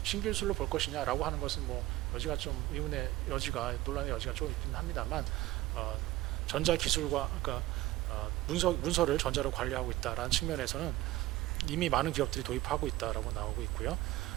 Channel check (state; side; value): quieter; left; 17.0 dB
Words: 신기술로 볼 것이냐라고 하는 것은 여지가 좀 의문의 여지가 논란의 여지가 좀 있긴 합니다만 전자 기술과 그러니까 문서를 전자로 관리하고 있다라는 측면에서는 이미 많은 기업들이 도입하고 있다라고 나오고 있고요.